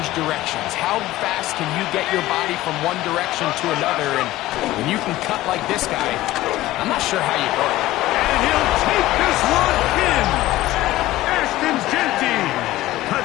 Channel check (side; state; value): right; quieter; 16.4 dB